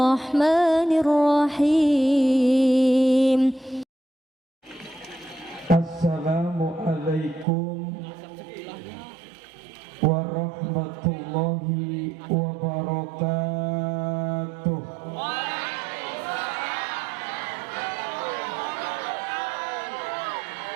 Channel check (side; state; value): left; drops out; at 7.5 s